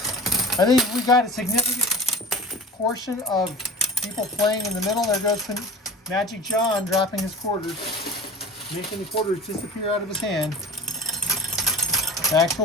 I think we got a significant portion of people playing in the middle. There goes Magic John dropping his quarters, making the quarters disappear out of his hand. Back to the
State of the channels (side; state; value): both; normal; correlation 0.38